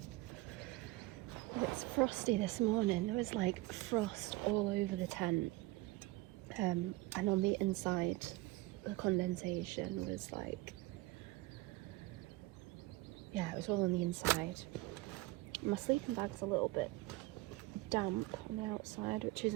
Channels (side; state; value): left; quieter; 19.1 dB